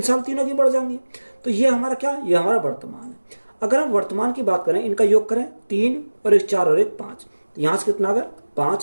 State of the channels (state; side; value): inverted; both; correlation -1.00